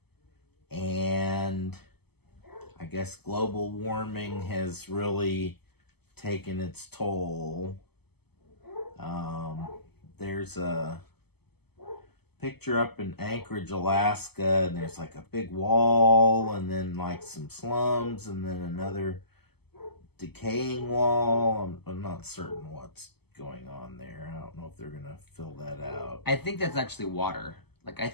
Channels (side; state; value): right; late; 0.97 ms